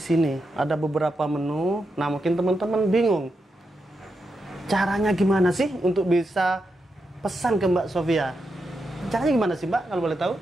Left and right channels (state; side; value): normal; both; correlation 0.85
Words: Ada beberapa menu. Nah, mungkin teman-teman bingung caranya gimana sih untuk bisa pesan ke Mbak Sofia. Caranya gimana sih Mbak, kalau boleh tahu?